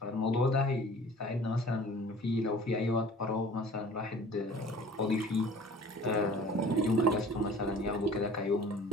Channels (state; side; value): normal; both; correlation 0.47